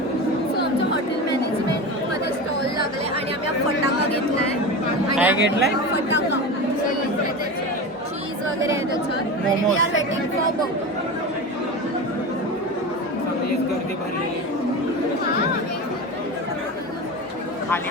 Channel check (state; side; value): normal; both; correlation 0.26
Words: आमच्या हॉटेल मॅनेजमेंटमध्ये स्टॉल लागले आणि आम्ही हा फटाका घेतलाय. काय घेतलाय? फटाका, चीज वगैरे आहे त्याच्यात. Momos. We are waiting for burger. गर्दी भरलेली. खाली